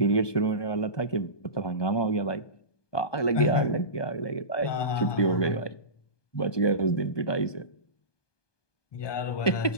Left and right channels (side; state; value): right; late; 1.2 ms